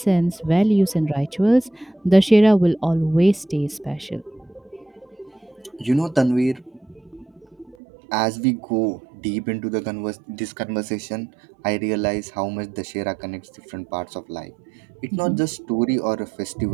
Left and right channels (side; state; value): left; drops out; at 7.8 s